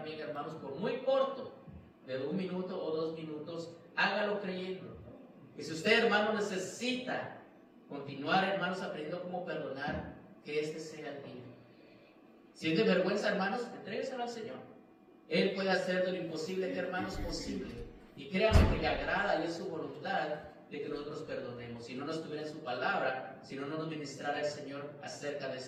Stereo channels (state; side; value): identical; both; correlation 1.00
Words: hermanos, por muy corto, de 1 minuto o 2 minutos, hágalo creyendo. Y si usted, hermano, necesita continuar, hermanos, aprendiendo cómo perdonar, que este sea el día. Siente vergüenza, hermanos, entrégueselo al Señor. Él puede hacer de lo imposible, que hermanos, posible. Y créanme que le agrada y es su voluntad de que nosotros perdonemos. Si no nos tuviera en su palabra, si no nos ministrara el Señor acerca de